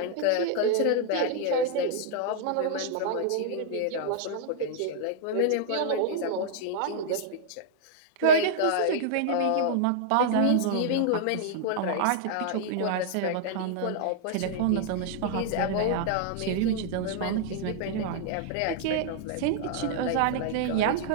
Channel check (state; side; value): different; both; correlation -0.01